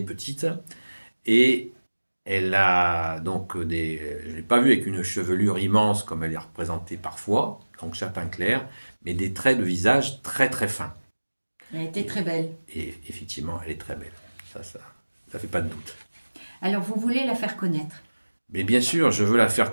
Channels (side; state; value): both; inverted; correlation -1.00